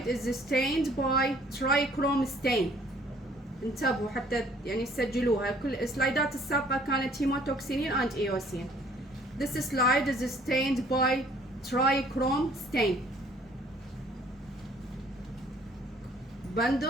is stained by trichrome stain. انتبهوا حتى يعني سجلوها. كل السلايدات السابقة كانت هيموتوكسينين and eosin. This slide is stained by trichrome stain.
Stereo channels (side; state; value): both; normal; correlation 0.58